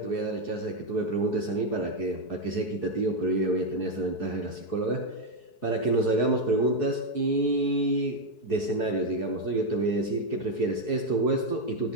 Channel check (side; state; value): right; late; 4.7 ms